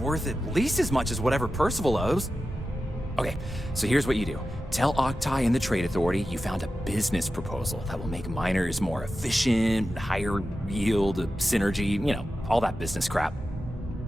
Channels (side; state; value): both; normal; correlation 0.93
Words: at least as much as whatever Percival owes. Okay, so here's what you do. Tell Octai and the Trade Authority you found a business proposal that will make miners more efficient, higher yield, synergy, you know, all that business crap.